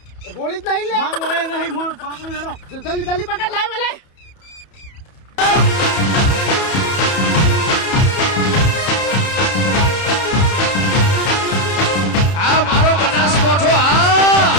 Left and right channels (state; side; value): late; right; 31 ms